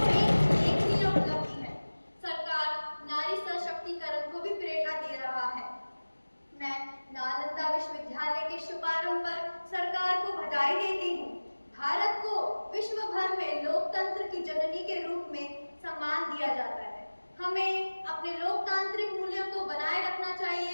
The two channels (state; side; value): inverted; both; correlation -1.00